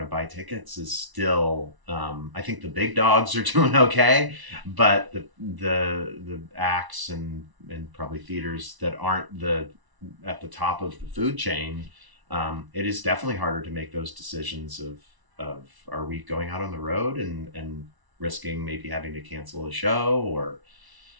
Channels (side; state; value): left; late; 1.0 ms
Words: to buy tickets is still, I think the big dogs are doing okay, but the acts and probably theaters that aren't at the top of the food chain, it is definitely harder to make those decisions of are we going out on the road and risking maybe having to cancel a show, or